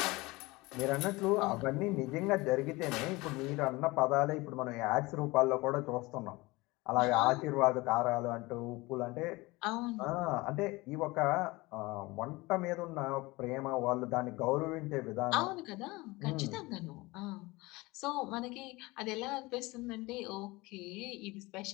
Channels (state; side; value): quieter; right; 22.2 dB